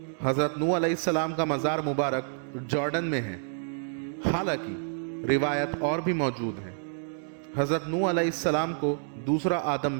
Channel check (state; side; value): silent; left; 59 dB below the other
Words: حضرت نوح علیہ السلام کا مزار مبارک جارڈن میں ہے، حالانکہ روایت اور بھی موجود ہے۔ حضرت نوح علیہ السلام کو دوسرا آدم